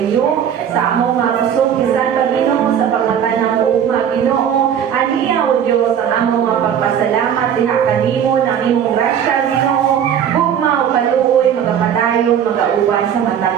sa among mga pusong kisan pa, Ginoo, sa pagmata ng uuma, Ginoo. Aniya, O Diyos, ang among mga pagpasalamat, diha kanimo ng imong grasya, Ginoo. Bugma o kaluoy, magapadayon, magauban sa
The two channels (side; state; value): left; quieter; 8.8 dB